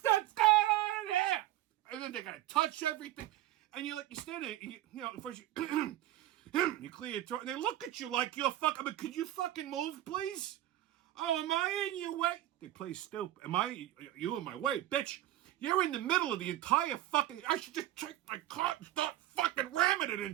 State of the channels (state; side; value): quieter; left; 14.5 dB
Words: going on there? And then they're going to touch everything. And you're like, you stand there, and you know, first you... You clear your throat, and they look at you like you're fucking... I mean, could you fucking move, please? Oh, am I in your way? They play stupid. You in my way? Bitch, you're in the middle of the entire fucking... I should just take my car and start fucking ramming it